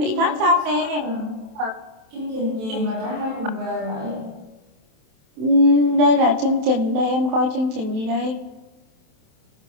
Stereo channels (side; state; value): left; late; 27 ms